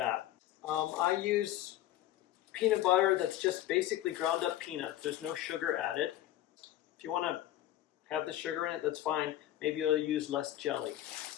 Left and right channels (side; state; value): right; quieter; 13.6 dB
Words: I use peanut butter that's just basically ground up peanuts. There's no sugar added. If you want to have the sugar in it, that's fine. Maybe you'll use less jelly.